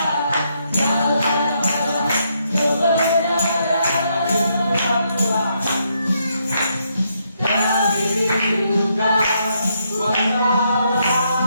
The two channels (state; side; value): inverted; both; correlation -0.77